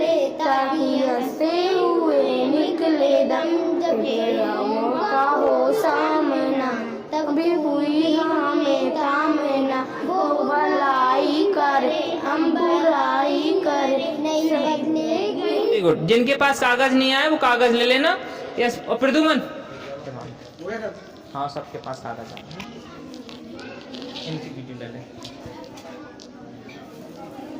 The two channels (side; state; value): both; identical; correlation 1.00